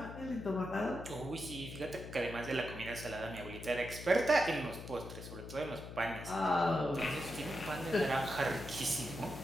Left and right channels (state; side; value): noise; left; hum, 10 dB below the sound